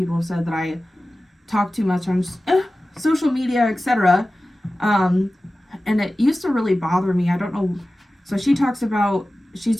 have said that I talk too much on social media, etc. And it used to really bother me. I don't know. So she talks about, she's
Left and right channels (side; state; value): both; normal; correlation 0.96